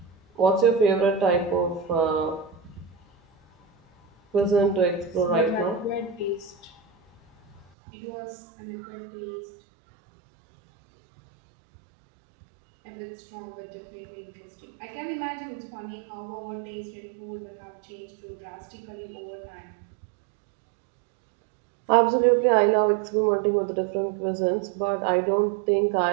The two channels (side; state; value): left; drops out; at 7.7 s